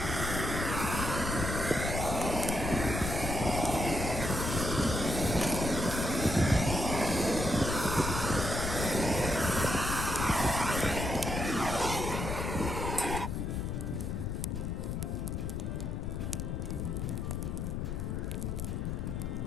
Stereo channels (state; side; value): noise; left; rumble, 2 dB below the sound